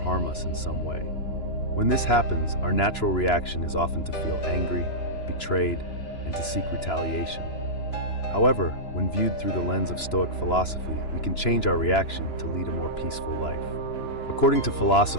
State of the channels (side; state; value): right; late; 2.9 ms